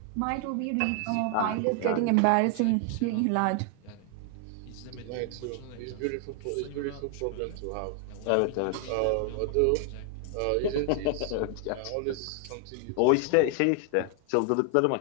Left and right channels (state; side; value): different; both; correlation 0.00